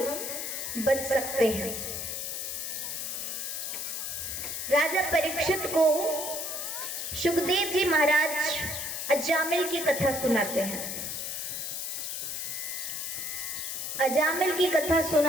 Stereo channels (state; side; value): noise; left; hiss, 4 dB below the sound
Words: बच सकते हैं। राजा परीक्षित को सुखदेव जी महाराज अजामिल की कथा सुनाते हैं। अजामिल की कथा